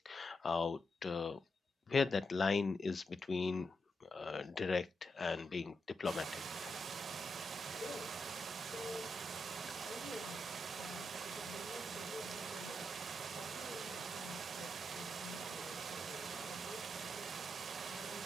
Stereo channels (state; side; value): normal; both; correlation 0.84